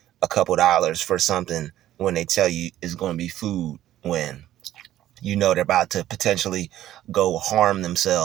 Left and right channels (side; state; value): left; quieter; 13.0 dB